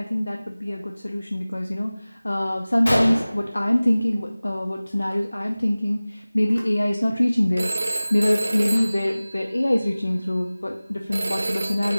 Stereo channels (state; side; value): inverted; both; correlation -0.99